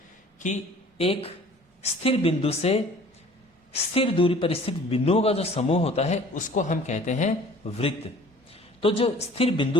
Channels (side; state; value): both; normal; correlation 0.50